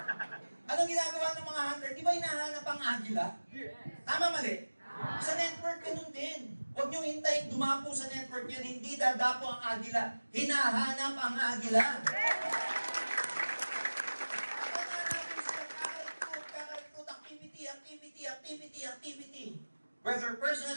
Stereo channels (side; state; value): both; inverted; correlation -1.00